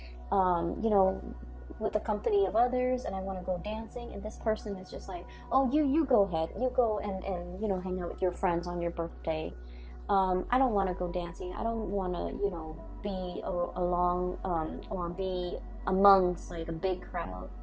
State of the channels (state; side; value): identical; both; correlation 1.00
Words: with the company of others, and I want to go dancing. And this person is just like, oh, you go ahead. You go and hang out with your friends on your birthday. I don't want to go dancing. I don't want to, be along or be amongst like a big crowd.